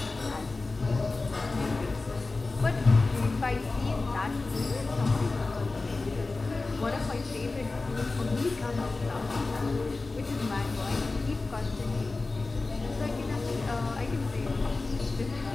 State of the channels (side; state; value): right; quieter; 3.5 dB